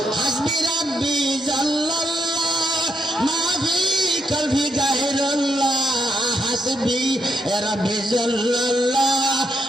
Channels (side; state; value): both; normal; correlation 0.79